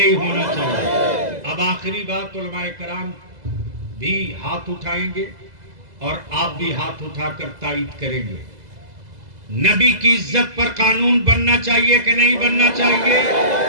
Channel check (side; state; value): left; late; 2.0 ms